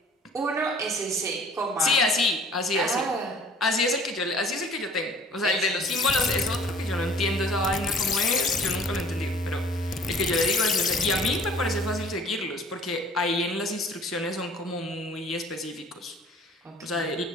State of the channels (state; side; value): normal; both; correlation 0.52